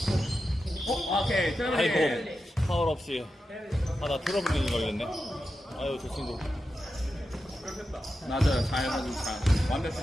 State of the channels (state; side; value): normal; both; correlation 0.90